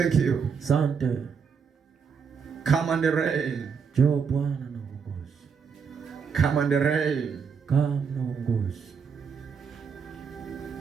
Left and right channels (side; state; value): left; quieter; 6.2 dB